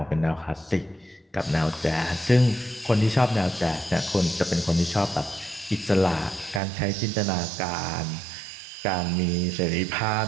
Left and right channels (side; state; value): left; drops out; at 6.6 s